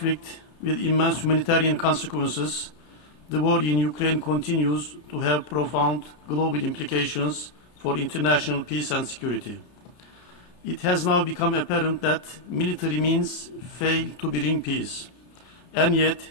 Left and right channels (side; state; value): right; late; 33 ms